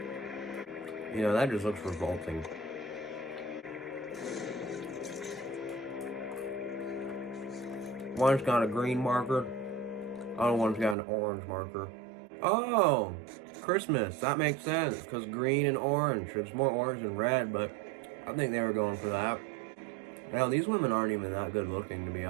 You know, that just looks revolting. One's got a green marker. Other one's got an orange marker. Oh! Christmas. That makes sense, because green and orange. It's more orange than red, but I think they were going for that. Now, these women aren't even that good looking, to be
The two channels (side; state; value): left; drops out; at 11.0 s